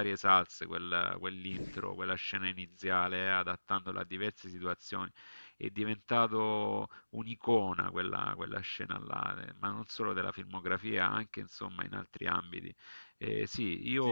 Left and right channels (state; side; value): inverted; both; correlation -1.00